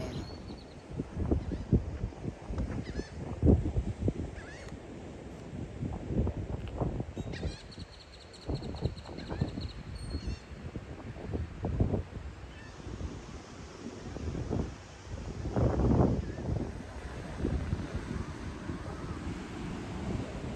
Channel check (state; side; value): identical; both; correlation 1.00